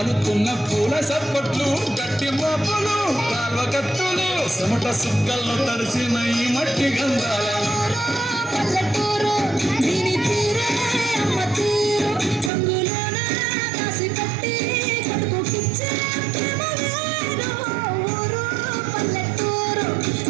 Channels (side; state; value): left; drops out; at 12.5 s